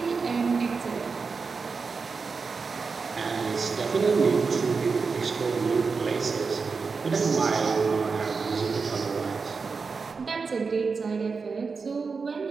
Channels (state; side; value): quieter; left; 4.8 dB